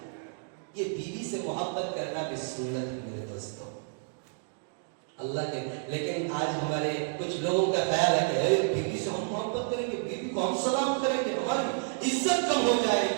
یہ بیوی سے محبت کرنا بھی سنت ہے میرے دوستوں، اللہ کے۔ لیکن آج ہمارے کچھ لوگوں کا خیال ہے کہ بیوی سے ہم محبت کریں گے، بیوی کو ہم سلام کریں گے، ہماری عزت کم ہو جائے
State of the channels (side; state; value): left; silent; digital silence